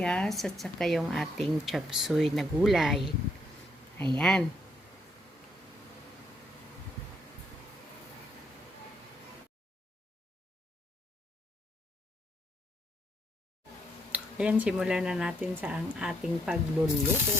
at saka yung ating chop suey na gulay. Ayan. Ayan, simulan na natin sa ang ating pagluluto.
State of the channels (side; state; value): both; normal; correlation 0.72